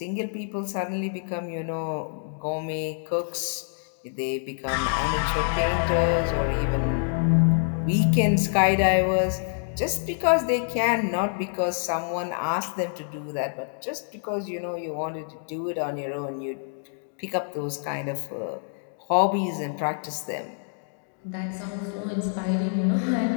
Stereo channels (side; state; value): right; silent; digital silence